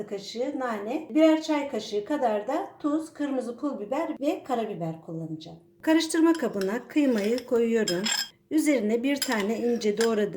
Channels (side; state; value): both; identical; correlation 1.00